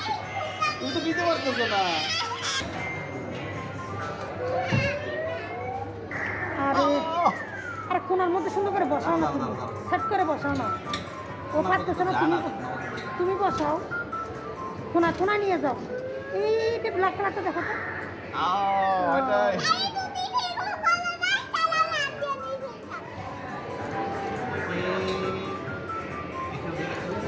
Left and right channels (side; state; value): both; identical; correlation 1.00